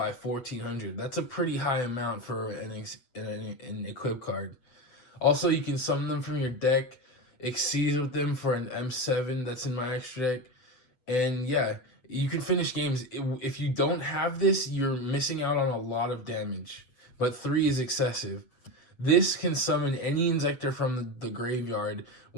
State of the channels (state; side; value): late; right; 8.2 ms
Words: 1400. That's a pretty high amount for an equip card. Also, you can summon them from your deck, exceeds with them for an M7 that's in my extra deck, and yeah, you can finish games. If you don't have this, you're missing out on a lot of damage, but 3 is excessive. This can summon any Inzektor from the graveyard